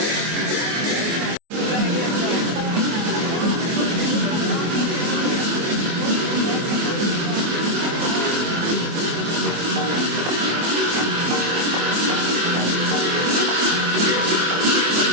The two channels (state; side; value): late; left; 24 ms